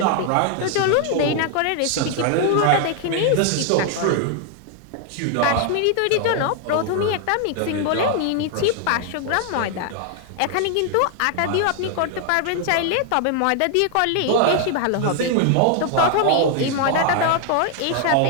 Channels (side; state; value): both; different; correlation 0.00